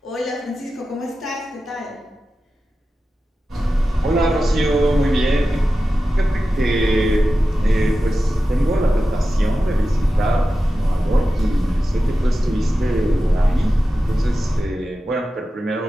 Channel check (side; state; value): both; normal; correlation 0.93